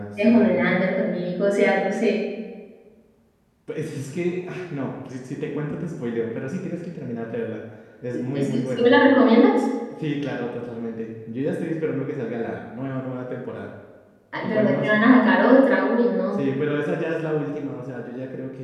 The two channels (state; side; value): identical; both; correlation 1.00